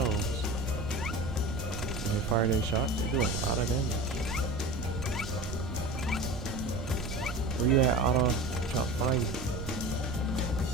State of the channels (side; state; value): right; noise; rumble, 8 dB below the sound